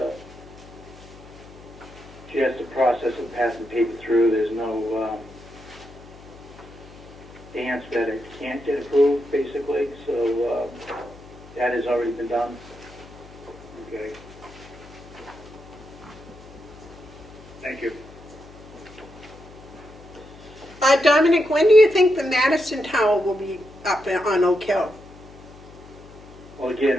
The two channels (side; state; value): left; noise; hum, 20 dB below the sound